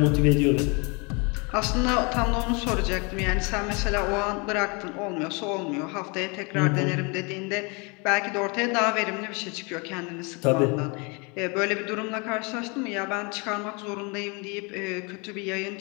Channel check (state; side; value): quieter; right; 30.9 dB